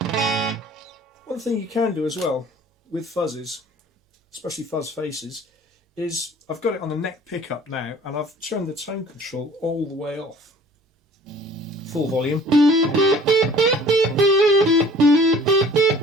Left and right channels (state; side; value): normal; both; correlation 0.50